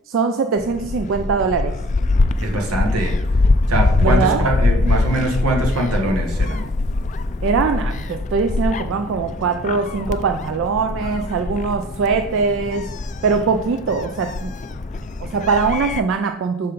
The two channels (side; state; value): both; normal; correlation 0.45